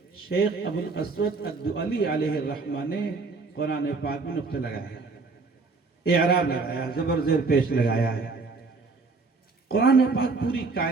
شیخ ابو الاسود الدؤلی علیہ الرحمہ نے قرآن پاک میں نقطے لگایا، اعراب لگایا، زبر زیر پیش لگایا ہے. قرآن پاک پوری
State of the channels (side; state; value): left; quieter; 4.1 dB